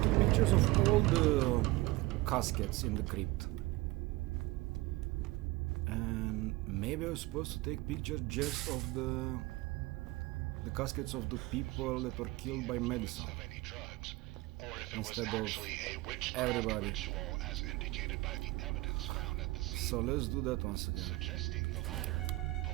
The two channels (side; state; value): left; quieter; 20.4 dB